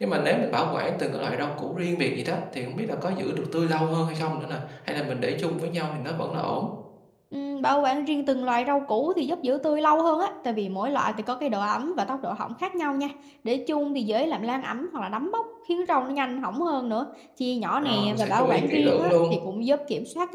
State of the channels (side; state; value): both; identical; correlation 1.00